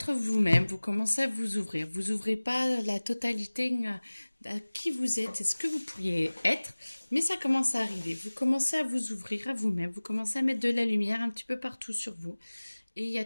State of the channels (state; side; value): inverted; both; correlation -1.00